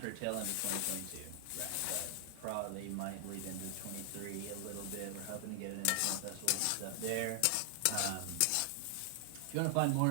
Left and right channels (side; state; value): both; different; correlation 0.00